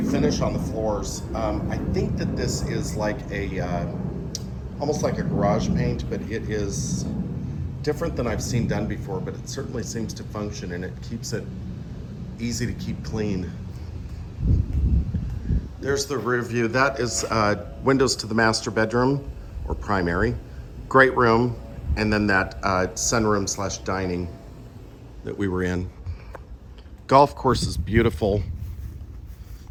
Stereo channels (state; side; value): identical; both; correlation 1.00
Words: finish on the floors. I think that this is like almost like a garage paint, but it is different than I've seen done before, but it certainly seems to function and it keeps it easy to keep clean. There's the rear view. That is windows to the master bedroom or primary. Great room. And then that sunroom slash dining that we were in. Golf course is beautiful.